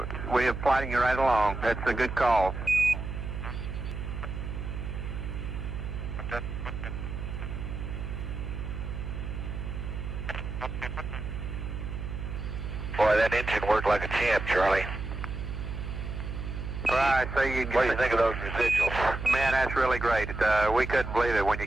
We are plotting you right along. That's a good call. Boy, that engine worked like a champ, Charlie. Right, so you. What do you think of those residuals? Man, that's really great. We couldn't believe it when you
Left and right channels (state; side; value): noise; right; hum, 6 dB below the sound